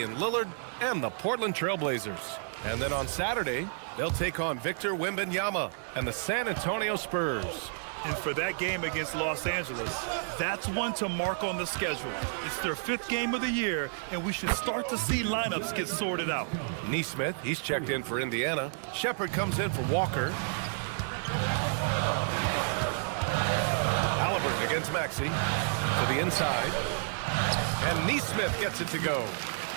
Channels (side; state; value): left; silent; digital silence